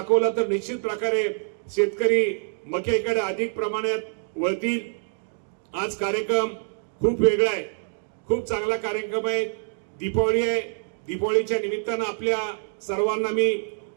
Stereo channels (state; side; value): silent; left; digital silence